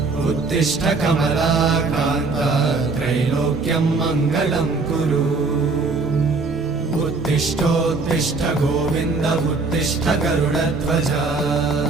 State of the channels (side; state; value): left; quieter; 3.9 dB